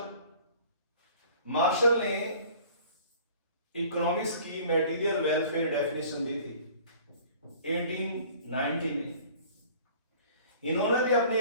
मार्शल ने इकोनॉमिक्स की मटेरियल वेलफेयर डेफिनेशन दी थी 1890 में। इन्होंने भी अपनी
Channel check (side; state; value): both; inverted; correlation -0.49